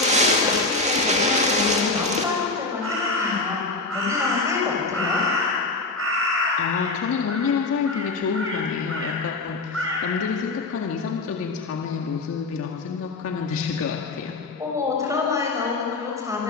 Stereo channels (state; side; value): quieter; right; 3.5 dB